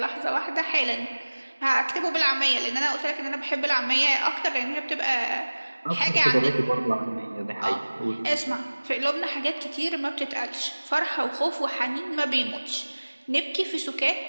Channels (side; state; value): both; inverted; correlation -1.00